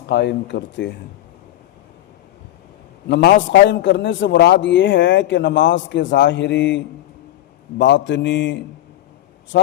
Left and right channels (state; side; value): quieter; right; 13.8 dB